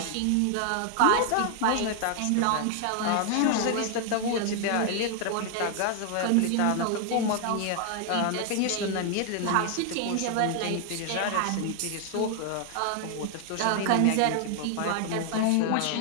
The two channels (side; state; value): both; different; correlation 0.00